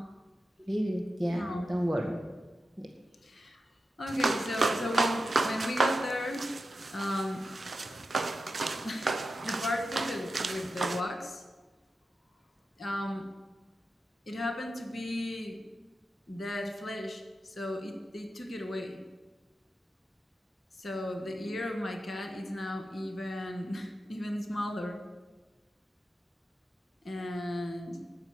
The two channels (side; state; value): both; normal; correlation 0.91